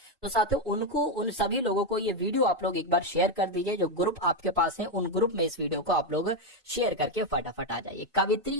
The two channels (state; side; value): normal; both; correlation 0.06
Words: तो साथियों उनको, उन सभी लोगों को ये वीडियो आप लोग एक बार शेयर कर दीजिए, जो ग्रुप आपके पास है उन ग्रुप में इस वीडियो को आप लोग शेयर करके फटाफट आ जाइए।